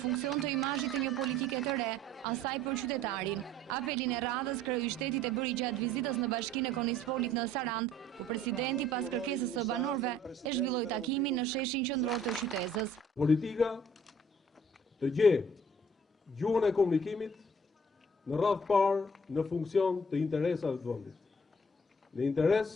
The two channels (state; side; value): normal; both; correlation 0.56